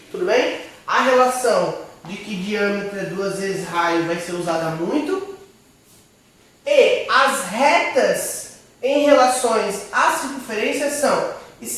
Tudo bem? A relação de que diâmetro é 2 vezes raio vai ser usada muito. E as retas em relações à circunferência são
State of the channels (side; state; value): both; identical; correlation 1.00